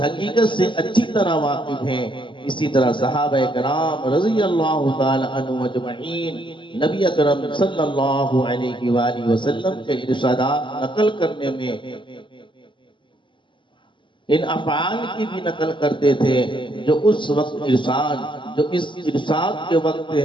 سے اچھی طرح واقف ہیں۔ اسی طرح صحابہ کرام رضی اللہ تعالی عنہ اجمعین نبی اکرم صلی اللہ علیہ وآلہ وسلم کے ارشادات نقل کرنے میں ان افعال کی بھی نقل کرتے تھے جو اس وقت جو اس ارشاد کے وقت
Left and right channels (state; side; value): late; right; 0.24 ms